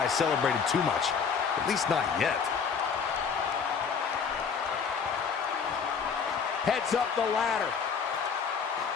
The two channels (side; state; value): right; quieter; 6.2 dB